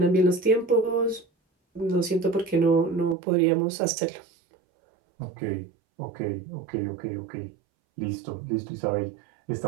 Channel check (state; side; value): drops out; left; at 3.2 s